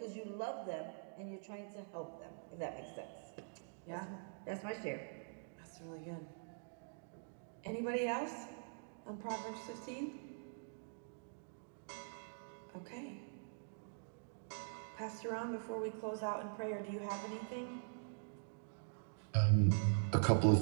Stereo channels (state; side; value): silent; left; digital silence